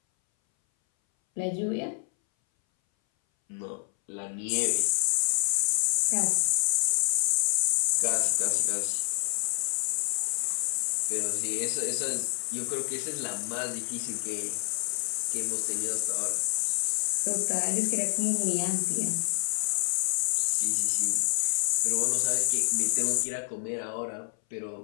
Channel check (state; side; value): silent; right; 59 dB below the other